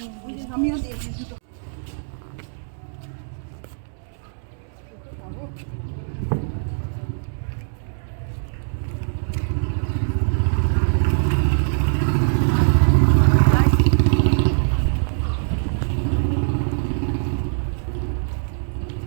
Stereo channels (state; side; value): silent; left; digital silence